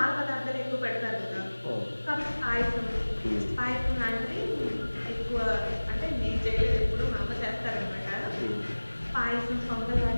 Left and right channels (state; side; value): inverted; both; correlation -1.00